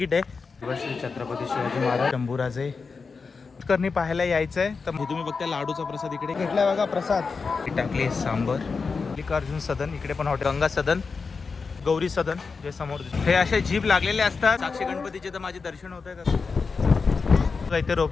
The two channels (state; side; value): quieter; right; 4.8 dB